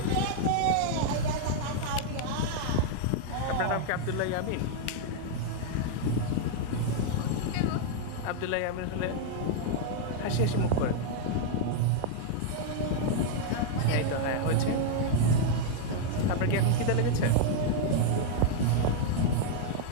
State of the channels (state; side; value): different; both; correlation -0.01